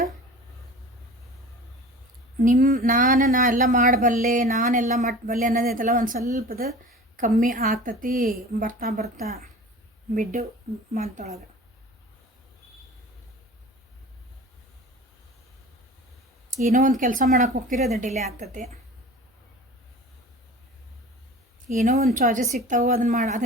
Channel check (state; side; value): normal; both; correlation 0.39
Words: ನಾ ಎಲ್ಲ ಮಾಡಬಲ್ಲೆ, ನಾನೆಲ್ಲ ಮಟ್ಟಬಲ್ಲೆ ಅನ್ನೋದೈತಲ್ಲ ಒಂದು ಸ್ವಲ್ಪದ ಕಮ್ಮಿ ಆಗ್ತತಿ ಬರ್ತಾ ಬರ್ತಾ ಮಿಡ್ ಮಂತೊಳಗೆ. ಏನೋ ಒಂದು ಕೆಲಸ ಮಾಡೋಕೆ ಹೋಗ್ತೀರಿ, ಅದು ಡಿಲೇ ಆಗ್ತತಿ. ಏನೋ ಒಂದು ಚಾಯ್ಸಸ್ ಸಿಗ್ತಾವೆ,